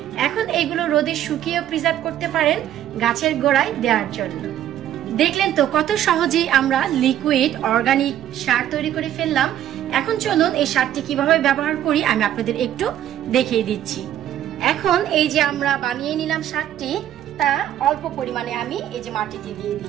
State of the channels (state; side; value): quieter; left; 11.5 dB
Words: এখন এগুলো রোদে শুকিয়ে প্রিজার্ভ করতে পারেন গাছের গোড়ায় দেওয়ার জন্য। দেখলেন তো কত সহজেই আমরা লিকুইড অর্গানিক সার তৈরি করে ফেললাম। এখন চলুন এই সারটি কিভাবে ব্যবহার করি আমি আপনাদের একটু দেখিয়ে দিচ্ছি। এখন এই যে আমরা বানিয়ে নিলাম সারটি, তা অল্প পরিমাণে আমি এই যে মাটিতে দিয়ে